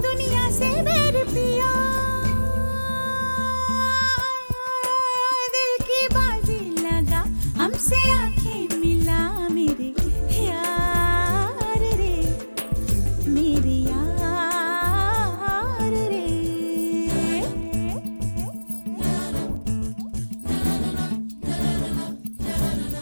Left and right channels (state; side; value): inverted; both; correlation -1.00